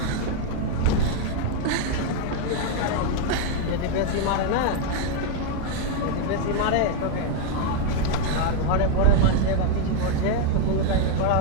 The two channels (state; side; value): different; both; correlation 0.01